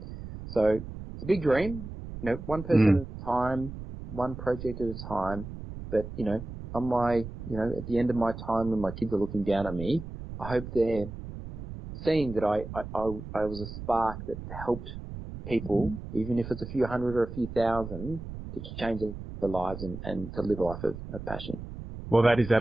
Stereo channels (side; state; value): right; noise; rumble, 10 dB below the sound